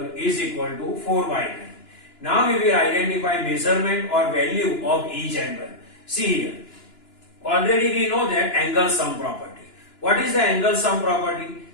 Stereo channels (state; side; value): late; right; 2.9 ms